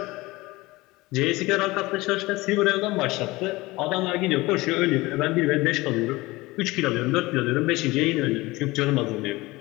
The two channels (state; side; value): quieter; right; 20.9 dB